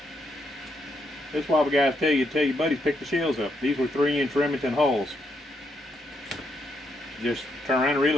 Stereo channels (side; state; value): both; normal; correlation 0.78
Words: That's why the guys tell your buddies pick the shells up. These were 3-inch Remington hulls. Just turn around and